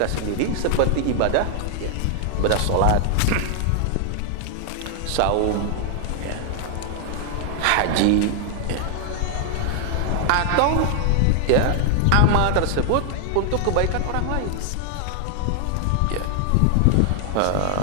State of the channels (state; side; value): different; both; correlation 0.00